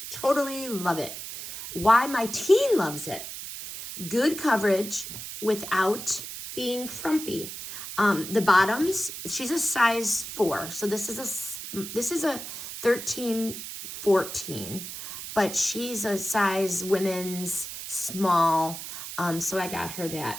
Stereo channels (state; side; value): noise; right; hiss, 9 dB below the sound